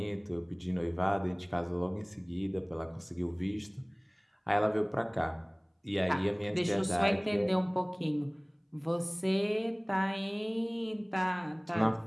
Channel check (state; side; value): identical; both; correlation 1.00